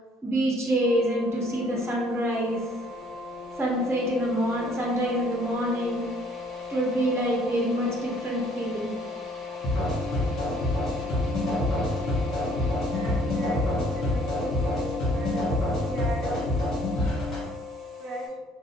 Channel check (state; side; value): normal; both; correlation 0.61